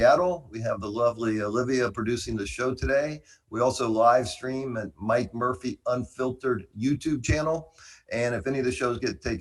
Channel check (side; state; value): both; identical; correlation 1.00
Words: We have the lovely Olivia producing the show today. We also live stream at Mike Murphy Unfiltered YouTube channel. And if any of the shows get